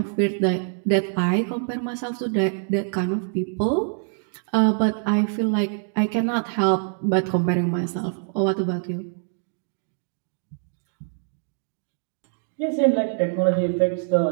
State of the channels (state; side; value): silent; left; 62 dB below the other